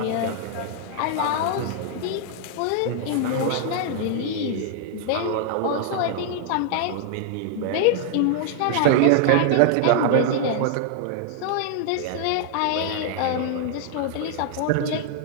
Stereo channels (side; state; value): both; different; correlation 0.00